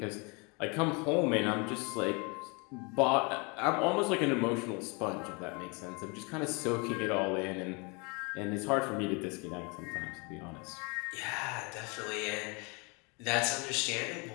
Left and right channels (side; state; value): right; quieter; 30.7 dB